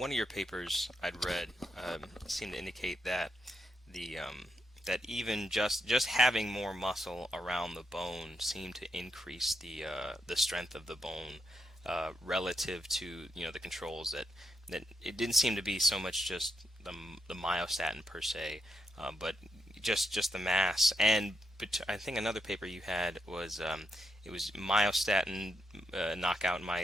of your papers I'd read seemed to indicate that that even just having more muscle around the bone seemed to increase the strength of the bone relative to the controls that it didn't seem to be so much just the myostatin per se, but just the mass. But I think another paper you had was it was myostatin knockout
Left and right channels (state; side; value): normal; both; correlation 0.83